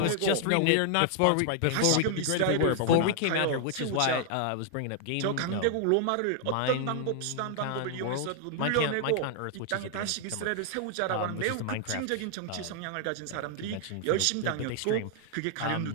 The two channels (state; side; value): different; both; correlation 0.00